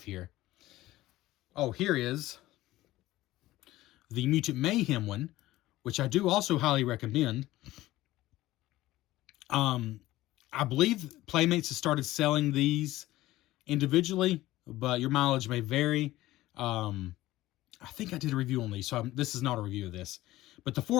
here. Oh, here is the Mutant Mayhem one, which I do also highly recommend. I believe Playmates has started selling these individually, but your mileage may vary. I think I did a review on these, so this is not a review of this. But the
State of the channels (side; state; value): right; quieter; 16.6 dB